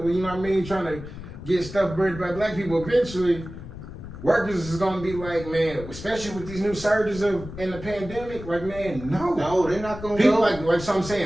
You know what I mean? Trying to get stuff worried about black people. Eventually, workers is gonna be like, man, especially with these new surges in the pandemic. Like, man, no, they're not gonna people go. like so I'm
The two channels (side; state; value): left; noise; rumble, 12 dB below the sound